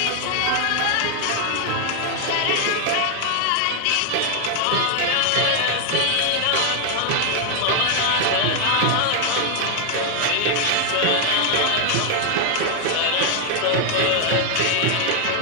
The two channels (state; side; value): different; both; correlation 0.00